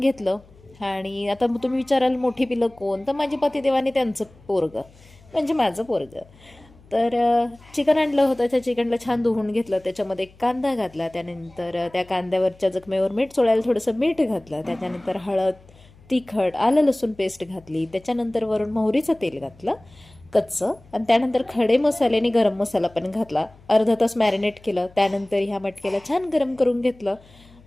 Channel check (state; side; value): noise; left; hum, 26 dB below the sound